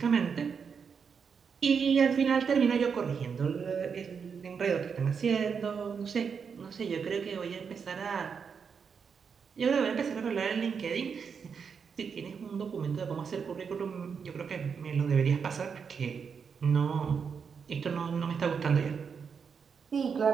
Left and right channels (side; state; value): left; quieter; 6.3 dB